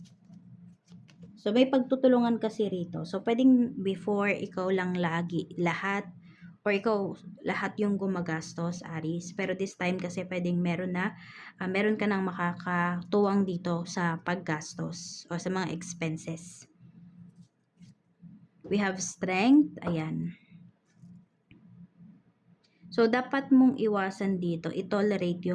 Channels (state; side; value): identical; both; correlation 1.00